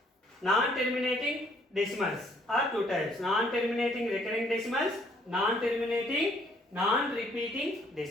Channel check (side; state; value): both; normal; correlation 0.64